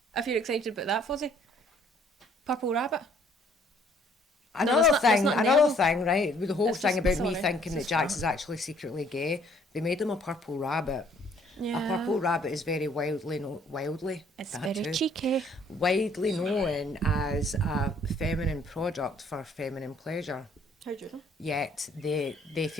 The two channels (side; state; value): both; normal; correlation 0.61